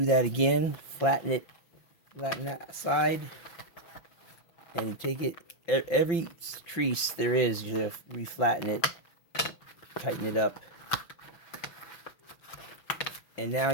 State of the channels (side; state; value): right; late; 5.8 ms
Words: that again. Flatten it, flatten that side, and you take it. Every crease there is, you have to reflatten it, tighten it up, and now